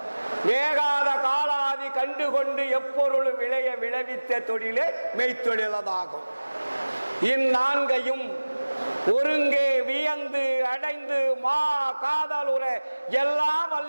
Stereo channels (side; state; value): both; inverted; correlation -1.00